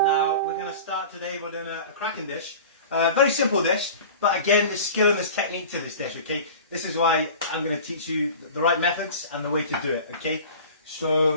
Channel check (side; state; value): both; inverted; correlation -0.38